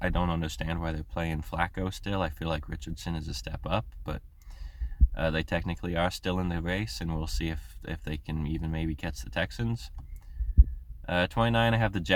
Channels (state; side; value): identical; both; correlation 1.00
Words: don't understand why they're playing Flacco still. I feel like Richardson is a step up, but they technically are still in the race, and we'll see if they can even maybe catch the Texans. 29, I have the